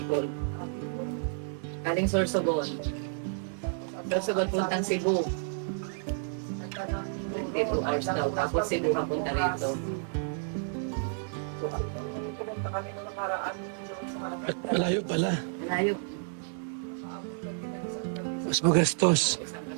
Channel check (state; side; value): silent; left; 57 dB below the other